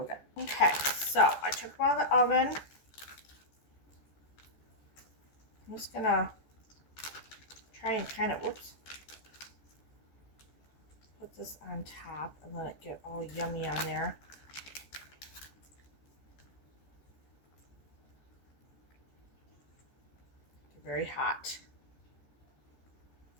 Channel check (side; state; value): right; late; 14 ms